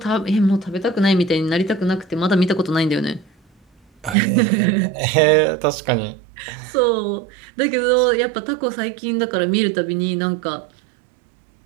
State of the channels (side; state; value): left; drops out; at 4.2 s